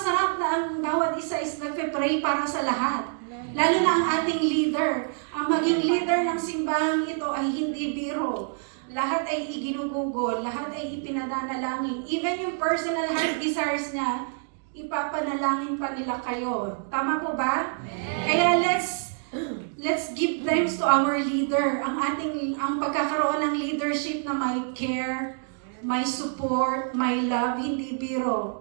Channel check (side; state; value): left; silent; 60 dB below the other